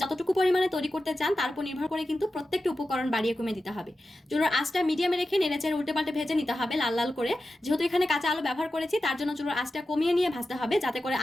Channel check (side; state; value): both; normal; correlation 0.92